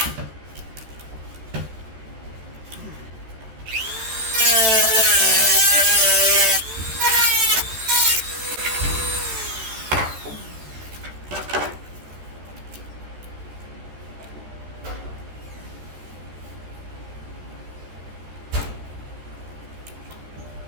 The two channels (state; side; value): late; left; 13 ms